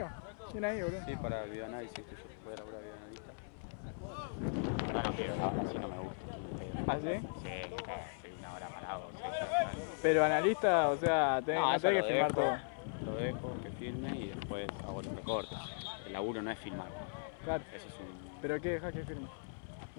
Bien ahí, boludo. Sí, para el videoanálisis, que yo puedo laburar videoanalista. No, no quiero, así no me gusta. ¿Ah, sí? Sí, estoy una hora parado. Pero analista, o sea, no tenés que filmar todo. Lo dejo, que filme y después hago los recortes. El laburo no es filmar. Claro. Eso es un... ¿Pero qué dejas que filme?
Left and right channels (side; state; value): right; silent; 52 dB below the other